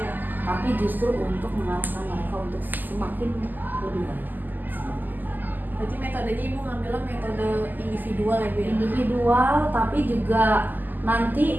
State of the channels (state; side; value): late; left; 0.086 ms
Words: Tapi justru untuk mengarahkan mereka untuk semakin lebih baik. Berarti metodenya Ibu ngambilnya metode individual ya Bu ya? Individual, tapi juga